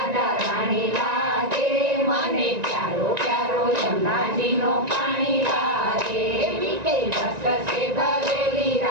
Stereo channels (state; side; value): late; left; 1.9 ms